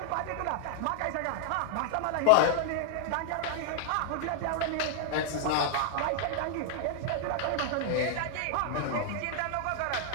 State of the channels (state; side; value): different; both; correlation -0.01